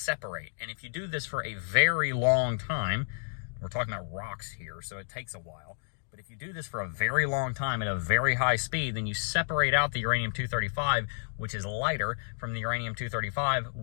And if you do this for a very long time, we're talking about rocks here, so it takes a while, but if you do this for a very long time at a very high speed, then you separate out the uranium-235, which is lighter, from the uranium-235,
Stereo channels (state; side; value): silent; right; digital silence